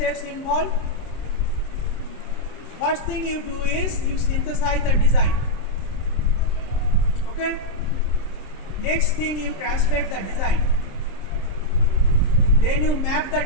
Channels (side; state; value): right; late; 26 ms